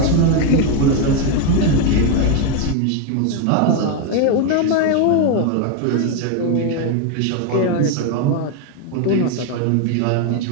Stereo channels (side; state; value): both; different; correlation 0.01